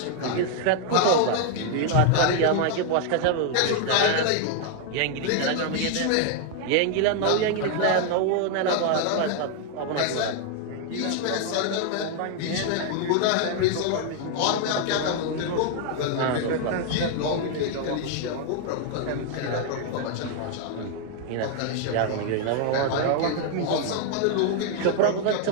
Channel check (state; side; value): different; both; correlation 0.00